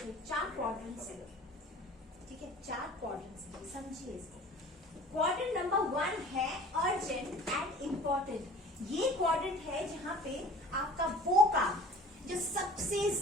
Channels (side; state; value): both; normal; correlation 0.45